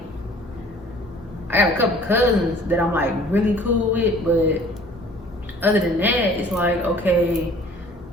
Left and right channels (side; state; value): both; normal; correlation 0.51